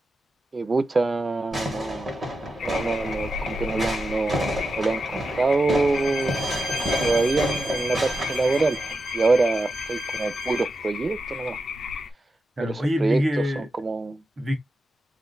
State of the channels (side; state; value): both; normal; correlation 0.89